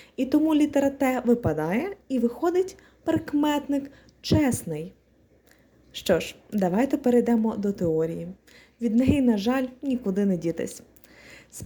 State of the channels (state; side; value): identical; both; correlation 1.00